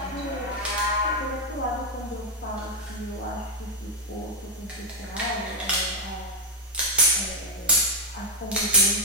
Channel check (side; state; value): both; normal; correlation 0.01